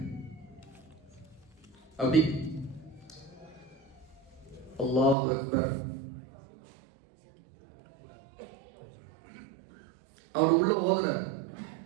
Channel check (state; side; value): drops out; left; at 5.2 s